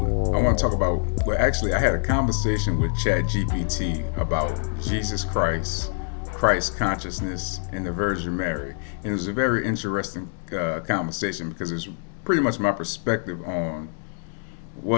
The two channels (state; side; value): silent; right; digital silence